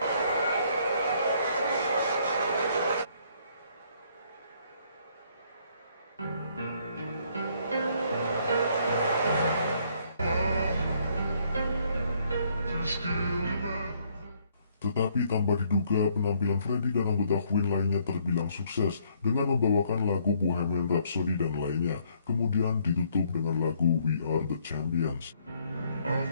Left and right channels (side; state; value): both; inverted; correlation -0.67